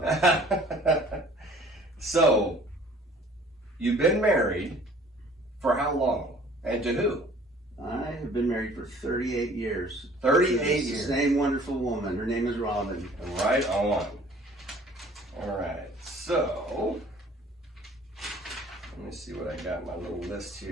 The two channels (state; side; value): normal; both; correlation 0.52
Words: So, you've been married for how long? And to who? I have been married for 38 years. 38 years. Same wonderful woman. Her name is Robin. Right on. All right. So, let me see what I got in my little list